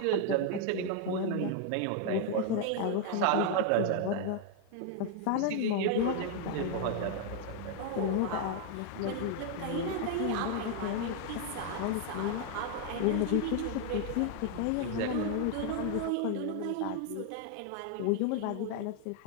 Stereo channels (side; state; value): both; different; correlation 0.00